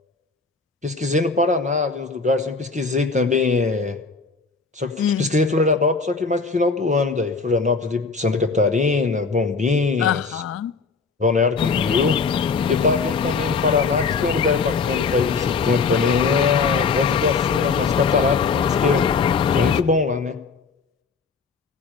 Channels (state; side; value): quieter; right; 4.6 dB